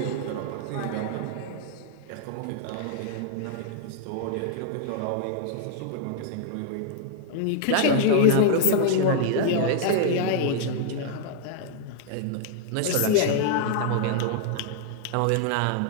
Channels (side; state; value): both; different; correlation -0.01